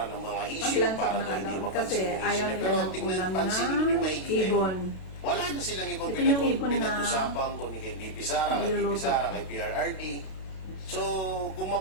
ng mga issue Mag-lunch para ako daw ng hindi alone mapansin kasi yung issue ayaw niya. nila Pero ng tingnan, ulam pansinin mo na yung maigi. ibon. Wala na silang ibang Ito yung ibon na pinag-usapan kung ni kay BP Sara, kay BP niluluto. Sara, kay PRRD. So, kung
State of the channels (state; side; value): late; right; 32 ms